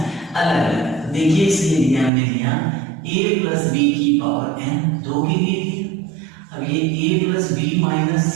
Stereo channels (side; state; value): left; drops out; at 2.1 s